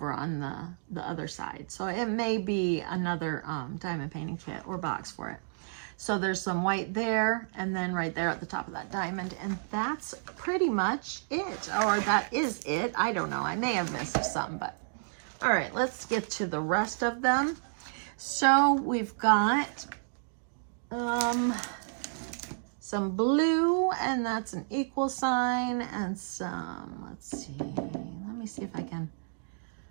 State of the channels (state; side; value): silent; left; digital silence